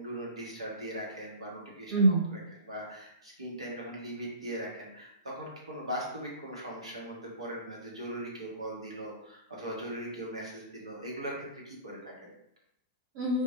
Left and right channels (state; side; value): inverted; both; correlation -0.43